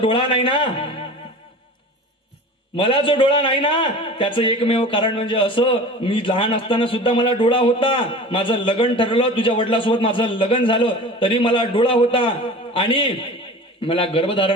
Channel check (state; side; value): normal; both; correlation 0.37